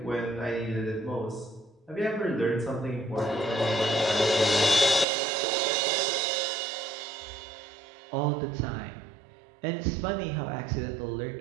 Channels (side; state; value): left; drops out; at 5.1 s